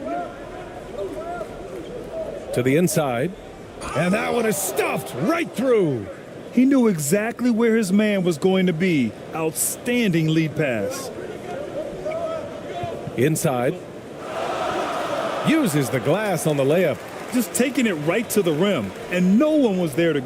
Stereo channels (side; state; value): both; identical; correlation 1.00